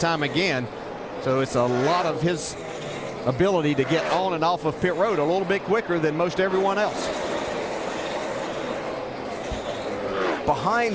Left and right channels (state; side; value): identical; both; correlation 1.00